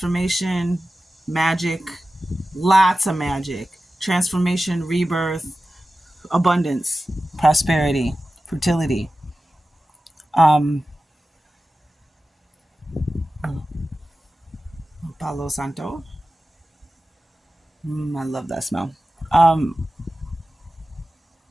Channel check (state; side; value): normal; both; correlation 0.94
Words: magic, lots of magic, transformation, rebirth, abundance, prosperity, fertility. Palo Santo. I love that smell.